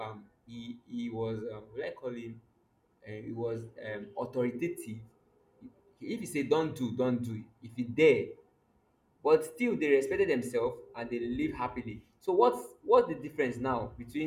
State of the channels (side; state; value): both; identical; correlation 1.00